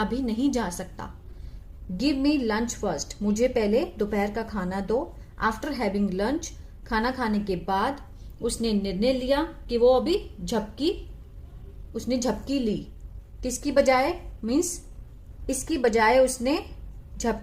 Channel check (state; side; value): identical; both; correlation 1.00